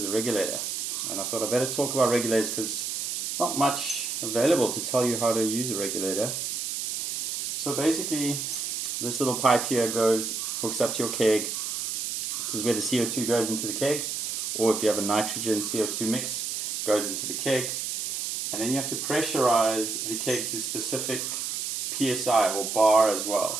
a regulator, and I thought I'd better talk about regulators because there's not much available to tell you how to use a regulator. So basically this little pipe here hooks up to your keg. This is where the CO2 goes into the keg, or if you have a nitrogen CO2 mix, goes into the keg. And then you have to pressurize the keg to specific PSI or bar as well.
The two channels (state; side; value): noise; right; hiss, 3 dB below the sound